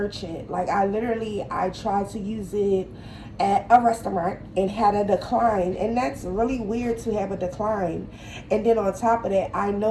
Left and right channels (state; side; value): identical; both; correlation 1.00